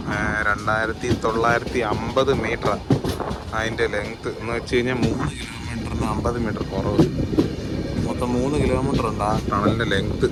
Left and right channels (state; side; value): identical; both; correlation 1.00